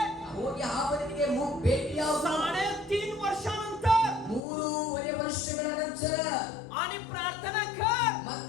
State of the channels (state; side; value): drops out; right; at 4.4 s